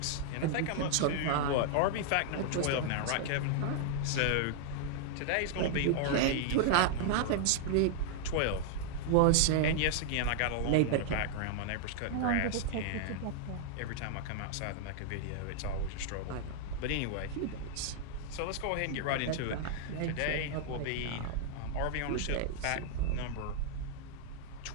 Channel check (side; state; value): both; different; correlation -0.01